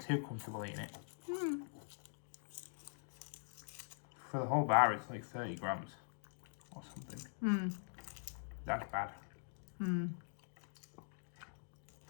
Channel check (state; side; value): silent; right; digital silence